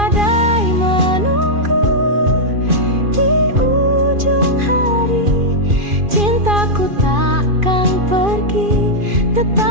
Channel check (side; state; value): left; late; 2.4 ms